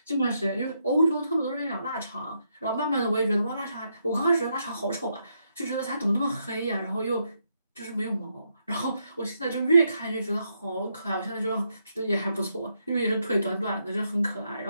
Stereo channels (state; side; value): inverted; both; correlation -0.79